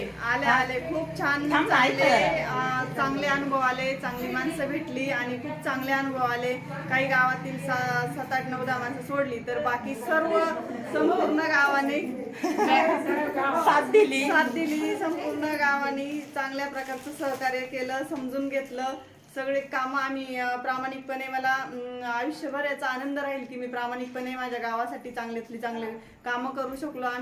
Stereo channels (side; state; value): both; identical; correlation 1.00